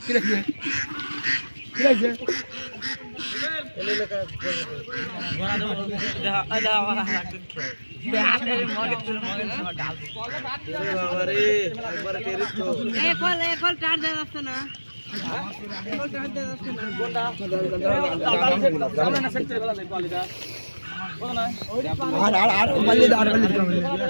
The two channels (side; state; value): both; inverted; correlation -1.00